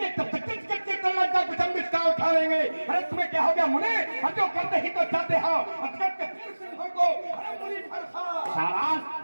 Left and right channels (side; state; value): both; inverted; correlation -1.00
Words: तब तक उठा लेंगे। अरे तुम्हें क्या हो गया मुने? जो करते ही तो चाहते हो